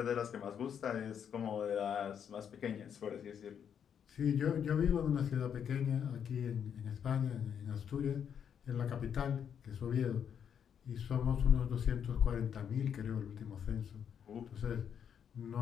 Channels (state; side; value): quieter; right; 8.1 dB